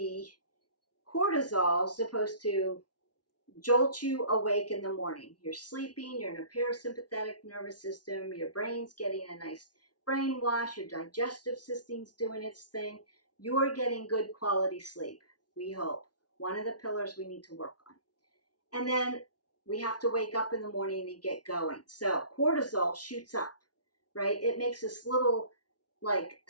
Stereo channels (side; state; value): right; late; 0.69 ms